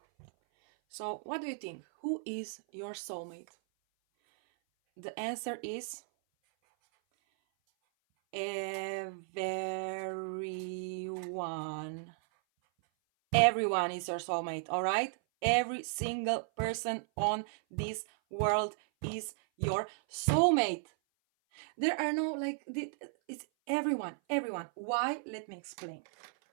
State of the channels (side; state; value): left; silent; 54 dB below the other